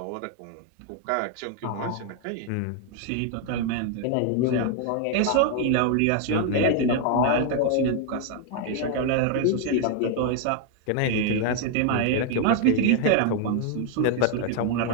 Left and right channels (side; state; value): both; different; correlation 0.00